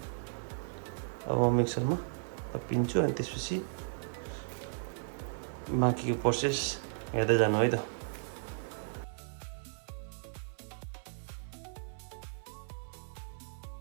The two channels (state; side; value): silent; left; 54 dB below the other